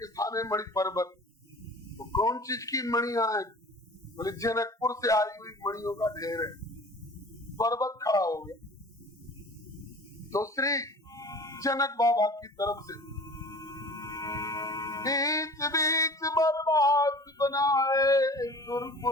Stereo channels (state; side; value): normal; both; correlation 0.42